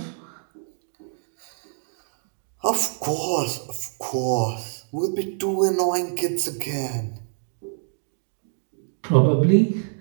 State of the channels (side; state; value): left; silent; 61 dB below the other